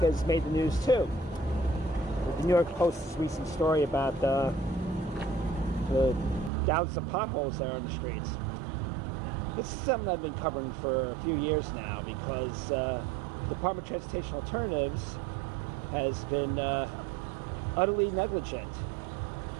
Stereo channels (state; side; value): drops out; left; at 6.5 s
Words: has made the news too. The New York Post's recent story about the thousands of potholes that are on the streets. This is something I've been covering for a few years now because the Department of Transportation Alternatives has been utterly negligent